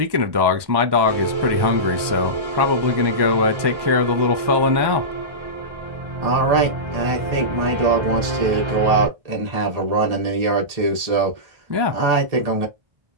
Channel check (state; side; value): late; left; 1.2 ms